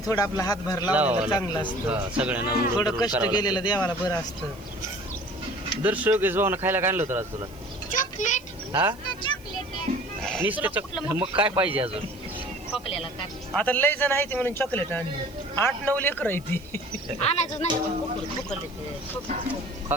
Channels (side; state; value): right; noise; hiss, 25 dB below the sound